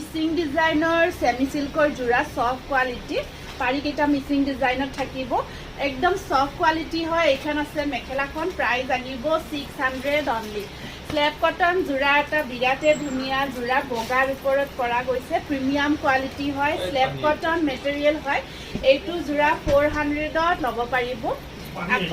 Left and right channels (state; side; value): identical; both; correlation 1.00